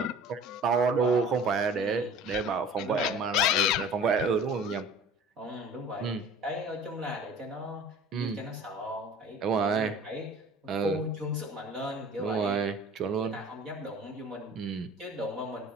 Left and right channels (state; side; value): normal; both; correlation 0.45